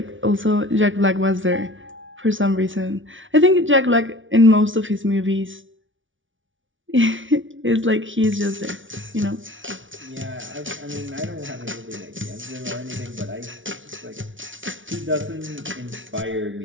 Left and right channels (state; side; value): late; left; 0.56 ms